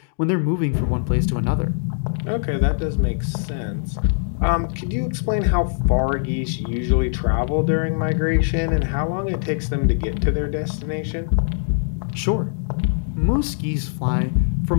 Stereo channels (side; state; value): right; silent; digital silence